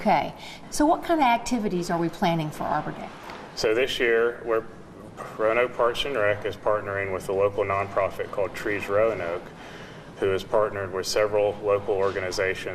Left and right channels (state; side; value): identical; both; correlation 1.00